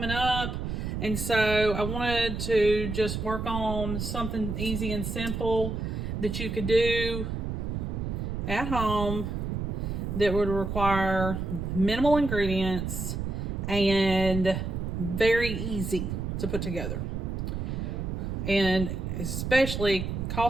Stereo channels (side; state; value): right; noise; rumble, 3 dB below the sound